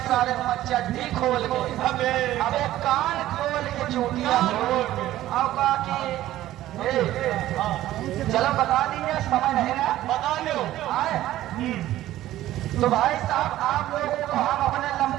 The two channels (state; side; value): quieter; left; 14.3 dB